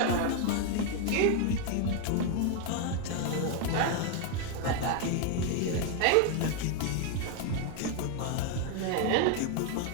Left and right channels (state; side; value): different; both; correlation 0.01